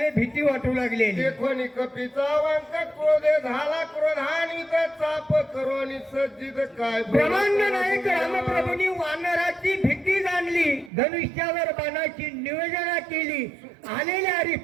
भीती वाटू लागले. देखोनी कपीचा वांक क्रोधे झाला क्रोधानी चाप करोनी सज्जित काय. ब्रह्मांड नायक रामप्रभूंनी वानराची भीती जाणली, धनुष्यावर बाणाची नियोजना केली. आलेल्या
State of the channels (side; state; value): left; drops out; at 10.9 s